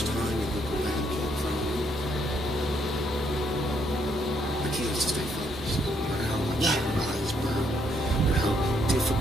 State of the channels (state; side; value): normal; both; correlation 0.72